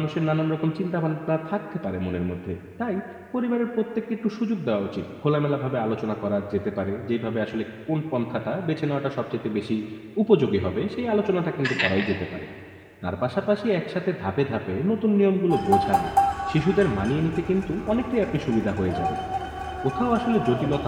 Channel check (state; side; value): identical; both; correlation 1.00